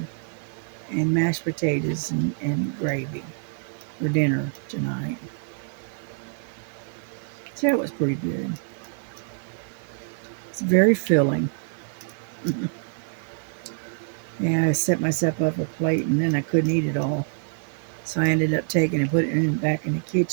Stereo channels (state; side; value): silent; left; digital silence